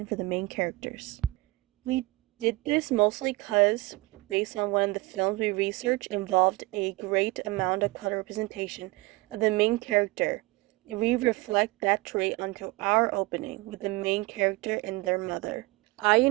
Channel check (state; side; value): quieter; left; 21.8 dB